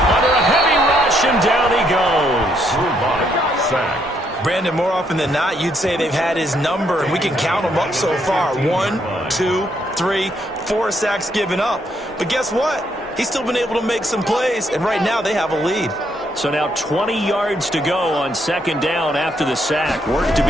a heavy rush, and down he goes. Sack. Brandon, more often than not, you'd say they've had his number, and we can count them up so far. 1, 2, 3, 4 sacks given up. But guess what? He's still been able to make some plays, and right now they have a lead. So now 20 yards to go on second down after the sack. Work to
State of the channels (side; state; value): both; normal; correlation 0.73